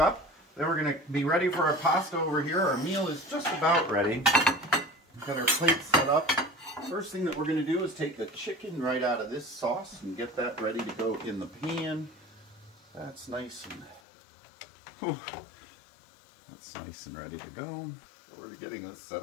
Then we're going to be ready for our pasta over here. Our meal is just about ready. We've got our plate set up. First thing that we're going to do is take the chicken right out of this sauce and get that ready to go in the pan. That's nice and that's nice and ready to go. So we're getting this set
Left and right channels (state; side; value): drops out; right; at 14.0 s